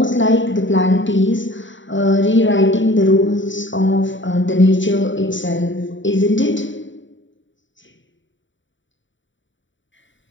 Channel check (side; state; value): right; late; 0.55 ms